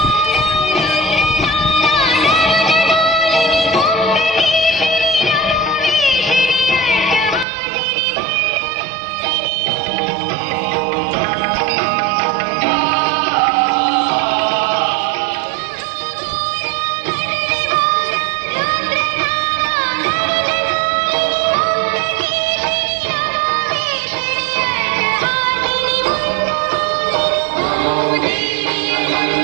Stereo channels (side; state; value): left; drops out; at 7.5 s